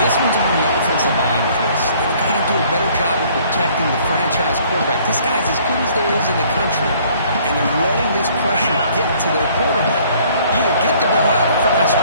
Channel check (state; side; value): inverted; both; correlation -0.59